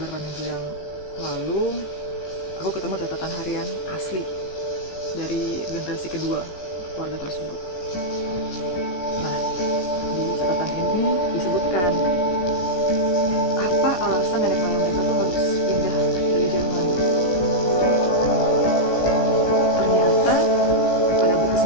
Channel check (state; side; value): late; right; 17 ms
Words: minggu yang lalu aku ketemu catatan harian asli dari generasi kedua keluarga tersebut. Nah, di catatan ini disebutkan apa alasan nenek moyang mereka tuh harus pindah dari Jerman waktu itu. Ternyata pada abad